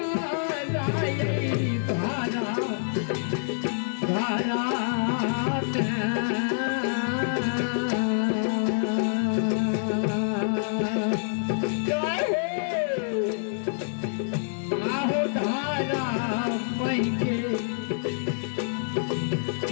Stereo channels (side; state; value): right; silent; digital silence